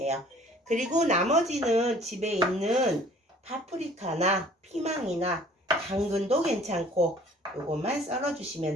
그리고 나머지는 집에 있는 파프리카나 피망이나 당근도 괜찮고 요것만 썰어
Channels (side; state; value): both; normal; correlation 0.54